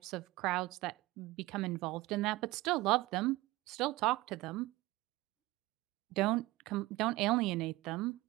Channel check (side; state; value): left; quieter; 19.4 dB